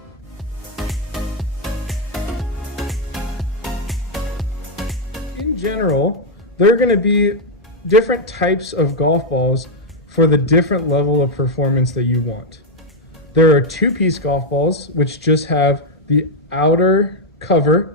In general, there are going to be different types of golf balls for the different level of performance that you want. There are 2-piece golf balls, which just have the outer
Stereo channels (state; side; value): normal; both; correlation 0.00